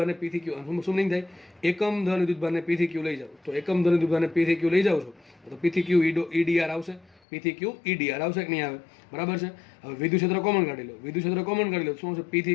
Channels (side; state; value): right; drops out; at 7.2 s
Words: પી થી ક્યુ, શું નહીં થાય? એકમ ધન વિદ્યુતભારને પી થી ક્યુ લઈ જાવ. તો એકમ ધન વિદ્યુતભારને પી થી ક્યુ લઈ જાવ છો તો પી થી ક્યુ ઈ ડીઆર આવશે. પી થી ક્યુ ઈ ડીઆર આવશે કે નહીં આવે? બરાબર છે. હવે વિદ્યુત ક્ષેત્ર કોમન કાઢી લો, વિદ્યુત ક્ષેત્ર કોમન કાઢી લો. શું આવશે? પી